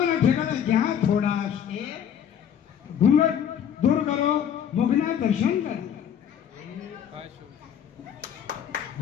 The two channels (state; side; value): quieter; right; 8.8 dB